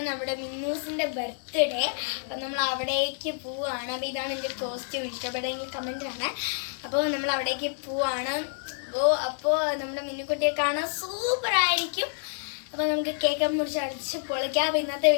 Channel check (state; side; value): silent; right; digital silence